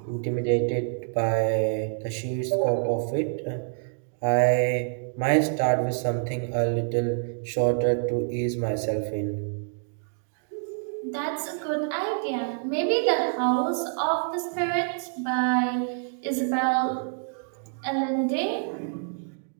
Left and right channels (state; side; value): silent; left; digital silence